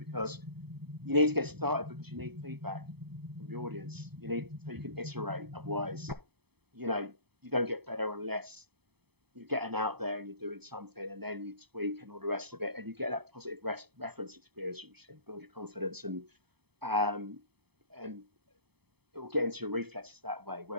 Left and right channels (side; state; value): left; late; 0.97 ms